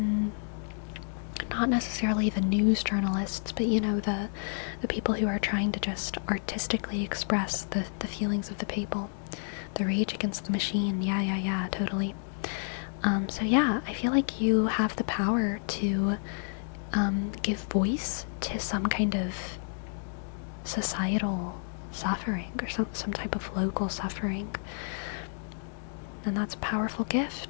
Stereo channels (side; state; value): right; silent; digital silence